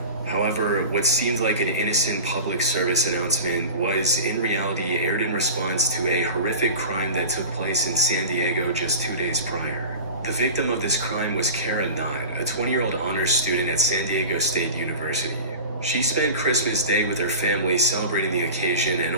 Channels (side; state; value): both; inverted; correlation -0.33